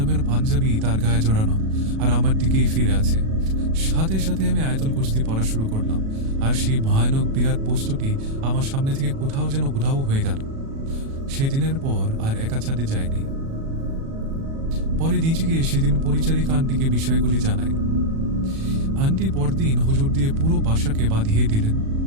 পাঞ্জাবি তার গায়ে জড়ানো, আর আমার দিকেই ফিরে আছে। সাথে সাথে আমি আয়তল কুস্তি পড়া শুরু করলাম, আর সেই ভয়ানক বিরাট বস্তুটি আমার সামনে থেকে কোথাও যেন উধাও হয়ে গেল। সেদিনের পর আর একা ছাদে যায়নি। পরে নিচে গিয়ে সেদিন পরিচারিকা আন্টিকে বিষয়গুলি জানাই। আন্টি পরদিন হুজুর দিয়ে পুরো বাসাকে বাঁধিয়ে দিলেন।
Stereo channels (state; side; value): late; left; 37 ms